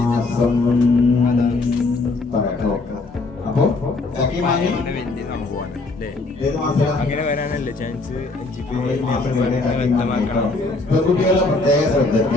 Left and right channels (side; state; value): right; quieter; 3.4 dB